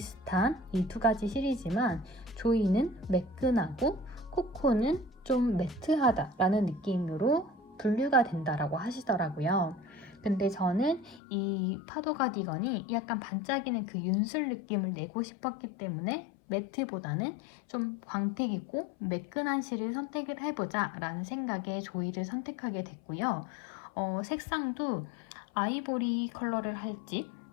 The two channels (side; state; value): right; drops out; at 11.2 s